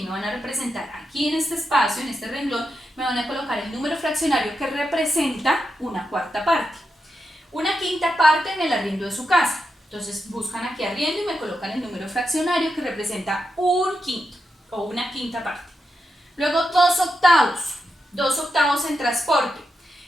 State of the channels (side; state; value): both; normal; correlation 0.86